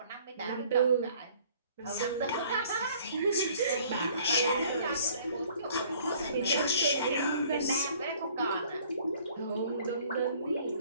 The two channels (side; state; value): both; inverted; correlation -0.56